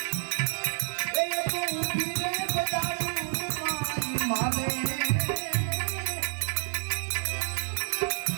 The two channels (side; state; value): left; silent; digital silence